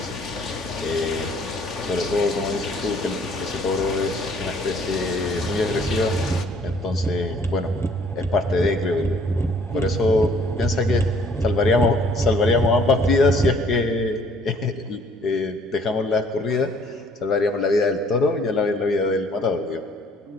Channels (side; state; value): both; normal; correlation 0.59